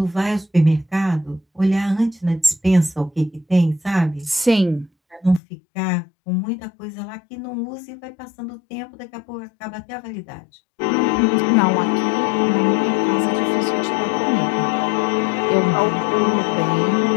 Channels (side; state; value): right; drops out; at 5.4 s